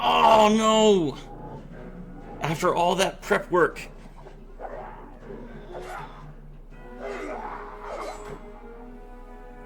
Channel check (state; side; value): identical; both; correlation 1.00